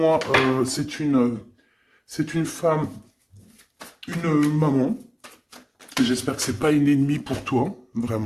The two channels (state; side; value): identical; both; correlation 1.00